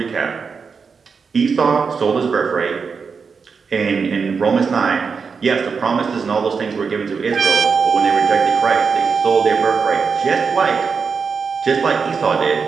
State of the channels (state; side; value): quieter; left; 5.5 dB